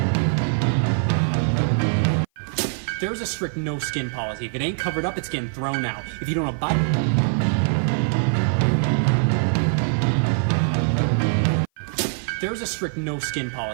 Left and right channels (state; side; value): silent; left; 56 dB below the other